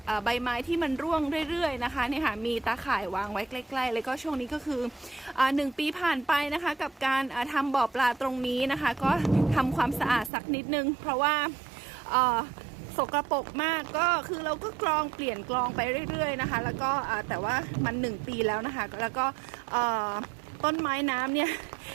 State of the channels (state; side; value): drops out; left; at 10.3 s